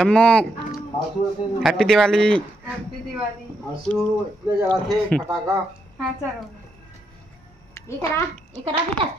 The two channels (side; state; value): both; normal; correlation 0.80